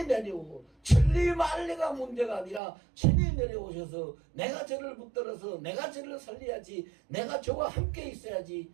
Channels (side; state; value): left; drops out; at 2.6 s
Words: 내려오고 천리 만리가 문제가 아니라 친히 내려오셔서 내가 저를 붙들어서 내가 저를 살려야지 내가 저와 함께 있어야지